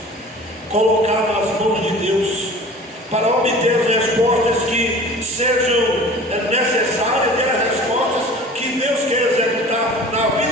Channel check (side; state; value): both; normal; correlation 0.42